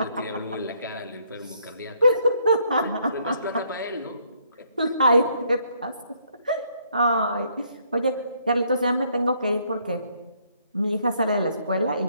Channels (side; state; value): both; inverted; correlation -0.69